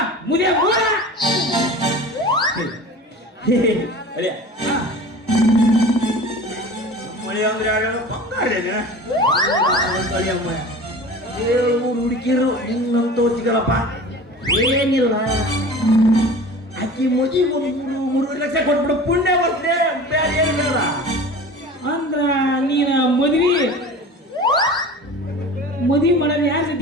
ಮುದಿಯ ಮೂಲ ಮಳೆ ಅಂದ್ರೆ ಯಾರು ಬಂಗಾರೇನ 7-3 ಹುಡುಗಿರು ನಿನ್ನಂತ ಸಿಗಲ್ಲಪ್ಪ ಏನಿಲ್ಲ ಆಕಿ ಮದುವೆ 3 ಲಕ್ಷ ಕೊಟ್ಬಿಡು ಪುಣ್ಯ ಬರ್ತದೆ ಬೇರೆ ಏನಿಲ್ಲ ಅಂದ್ರ ನೀನ ಮದುವೆ ಮಾಡೋದು ಯಾರು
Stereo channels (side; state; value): both; normal; correlation 0.38